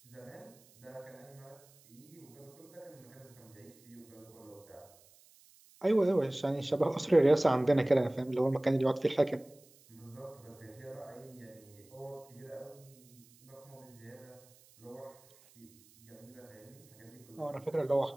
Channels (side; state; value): right; noise; hiss, 26 dB below the sound